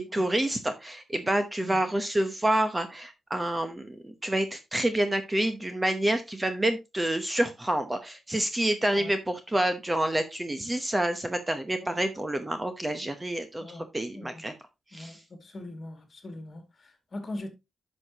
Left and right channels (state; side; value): normal; both; correlation 0.94